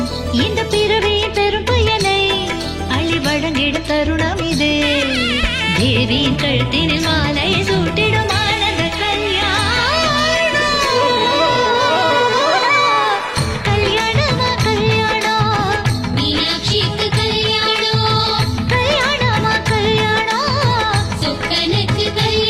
இந்த பிறவியின் பெரும் பயனை அள்ளி வழங்கிடும் தருணம் இது. தேவியின் கழுத்தினில் மாலை சூட்டிடும் ஆனந்த கல்யாணம். கல்யாணமா கல்யாணம், மீனாட்சிக்கு கல்யாணம், கல்யாணமா கல்யாணம், சொக்கனுக்கு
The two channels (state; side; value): identical; both; correlation 1.00